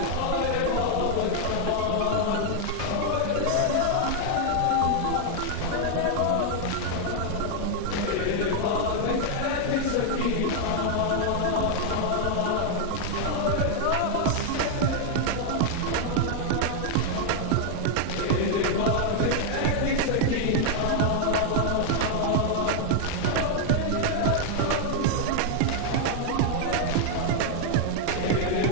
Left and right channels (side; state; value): both; different; correlation 0.00